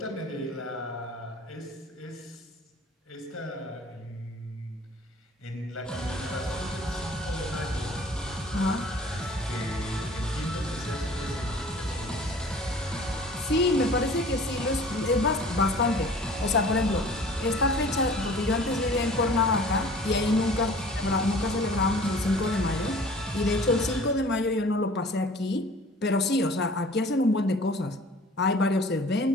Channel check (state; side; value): normal; both; correlation 0.47